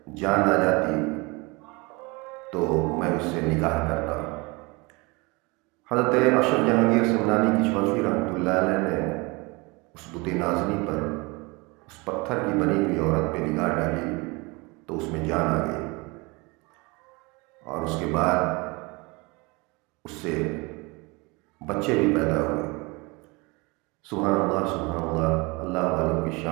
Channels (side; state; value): left; quieter; 26.4 dB